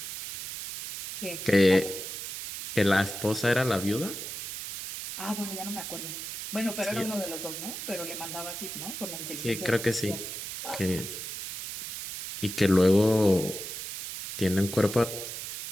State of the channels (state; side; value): noise; right; hiss, 7 dB below the sound